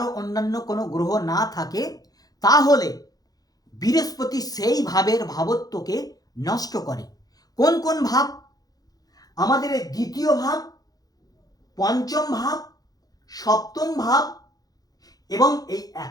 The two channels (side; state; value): right; late; 0.18 ms